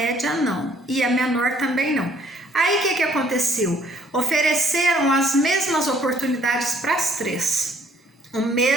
não. E a menor também não. Aí o que aconteceu? Ofereceram as mesmas oportunidades para as 3. O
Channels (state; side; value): normal; both; correlation 0.62